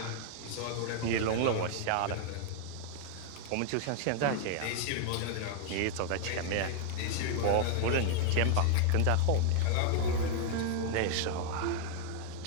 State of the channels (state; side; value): different; both; correlation 0.00